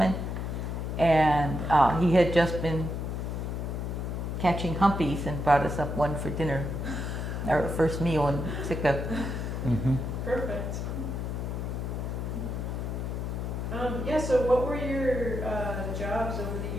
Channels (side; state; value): left; noise; hum, 3 dB below the sound